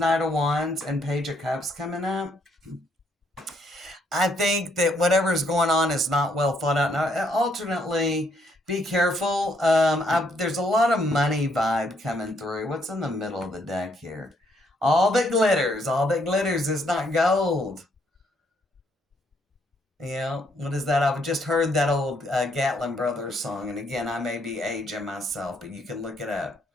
of Wands and Page of Cups coming up, I think that whatever's going on is not well thought out. Now, alternately, Be careful. There's a lot of money vibe coming through. What's in the middle of the deck here? All that glitters is not gold. Yeah, what is that? I've just heard that old Gatlin Brothers song, and again, I may be aging myself, but you can look it up.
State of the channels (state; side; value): normal; both; correlation 0.71